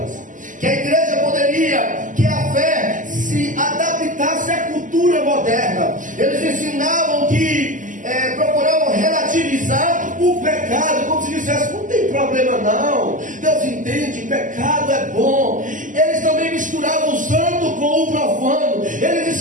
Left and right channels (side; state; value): left; late; 0.38 ms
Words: que a igreja poderia, que a fé se adaptasse à cultura moderna. Eles ensinavam que procuravam relativizar o pecado, como se dissesse, não tem problema não, Deus entende, pecado é bom. Eles também misturavam o santo com o profano, eles